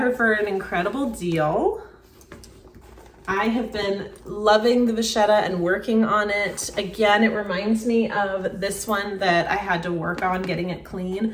for an incredible deal. I have been loving the vachetta and working on it. Again, it reminds me of this one that I had to work on getting it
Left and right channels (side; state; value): both; identical; correlation 1.00